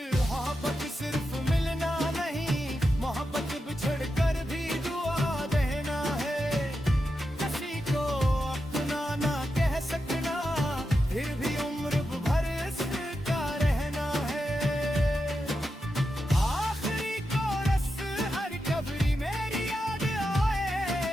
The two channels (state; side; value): normal; both; correlation 0.88